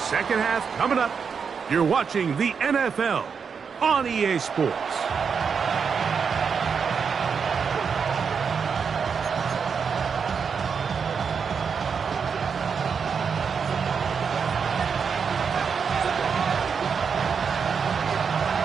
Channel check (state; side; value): quieter; left; 6.2 dB